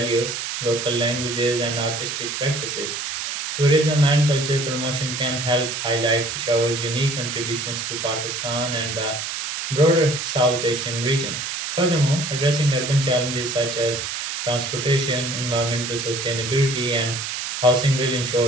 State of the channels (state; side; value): noise; right; hiss, 4 dB below the sound